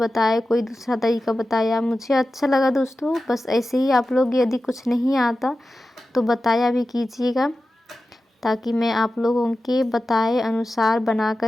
कोई दूसरा तरीका बताया, मुझे अच्छा लगा दोस्तों। बस ऐसे ही आप लोग यदि कुछ नहीं आता तो बताया भी कीजिएगा, ताकि मैं आप लोगों के बताए अनुसार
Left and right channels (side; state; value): both; normal; correlation 0.94